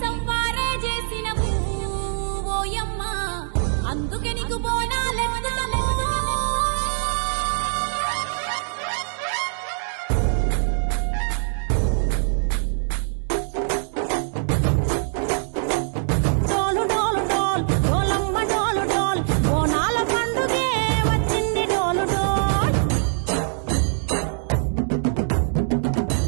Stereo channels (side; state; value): left; silent; digital silence